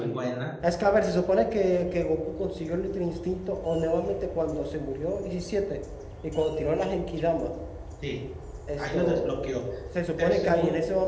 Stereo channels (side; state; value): both; identical; correlation 1.00